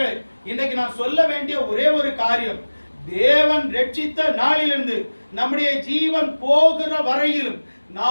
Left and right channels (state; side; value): inverted; both; correlation -1.00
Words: இன்னைக்கு நான் சொல்ல வேண்டிய ஒரே ஒரு காரியம், தேவன் ரட்சித்த நாளிலிருந்து நம்முடைய ஜீவன் போகிற வரையிலும்